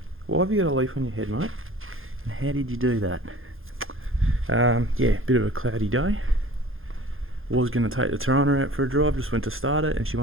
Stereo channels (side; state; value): left; late; 0.60 ms